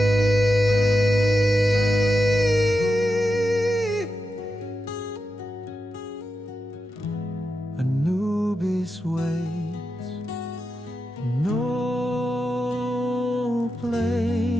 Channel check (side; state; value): both; normal; correlation 0.88